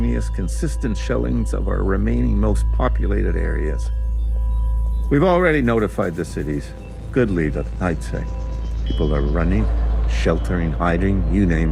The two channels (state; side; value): identical; both; correlation 1.00